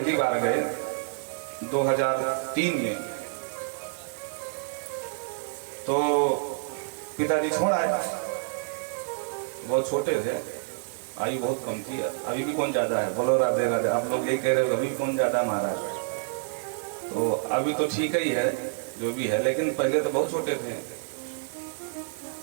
बार गए 2003 में, तो पिताजी छोड़ आए। बहुत छोटे थे, आयु बहुत कम थी। अभी भी कौन ज्यादा है, बोलो राधे राधे। आप लोग यही कह रहे हो अभी भी कौन ज्यादा है महाराज। तो अभी तो ठीक ही है जो भी है, लेकिन पहले तो बहुत छोटे थे।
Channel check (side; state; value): left; silent; digital silence